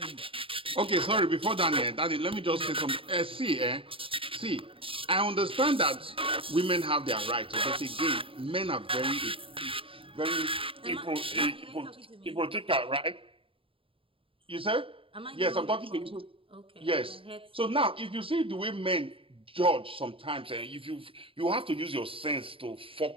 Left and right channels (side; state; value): left; late; 0.26 ms